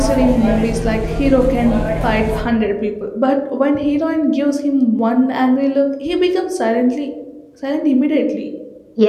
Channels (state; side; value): identical; both; correlation 1.00